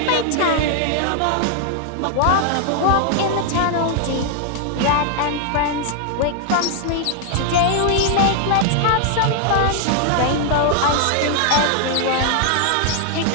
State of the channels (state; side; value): different; both; correlation 0.00